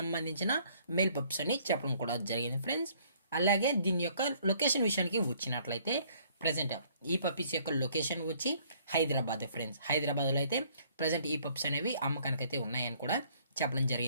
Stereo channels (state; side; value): inverted; both; correlation -0.61